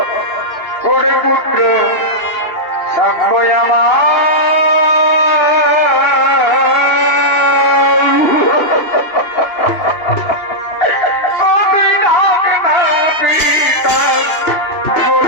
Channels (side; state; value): right; late; 2.8 ms